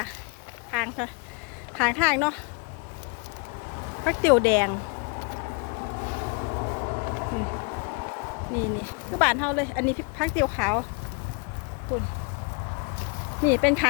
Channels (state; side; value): quieter; right; 33.2 dB